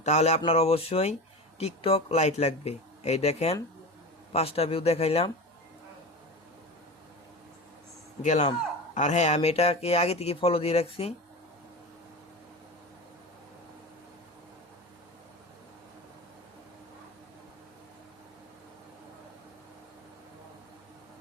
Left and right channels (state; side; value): normal; both; correlation 0.27